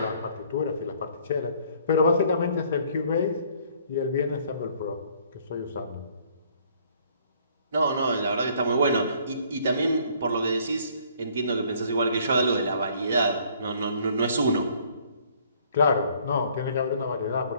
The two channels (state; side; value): inverted; both; correlation -0.60